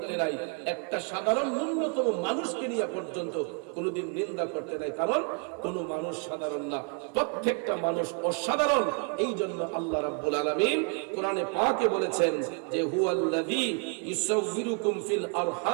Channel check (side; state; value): left; quieter; 36.4 dB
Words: নাই। একটা সাধারণ ন্যূনতম মানুষকে নিয়ে পর্যন্ত কোনোদিন নিন্দা করতে নাই, কারণ কোন মানুষ সাধারণ না, প্রত্যেকটা মানুষ অসাধারণ। এই জন্য আল্লাহ রাব্বুল আলামিন কোরআনে পাকে বলেছেন যে হুয়াল্লাযী ইউসাউবিরুকুম ফিল